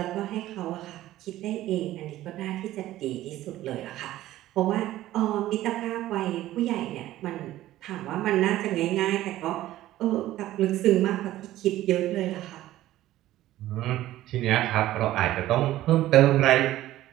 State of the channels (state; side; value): quieter; left; 14.7 dB